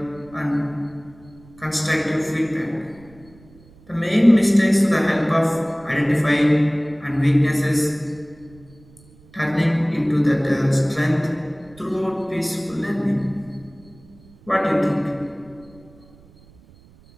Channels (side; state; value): right; noise; rumble, 25 dB below the sound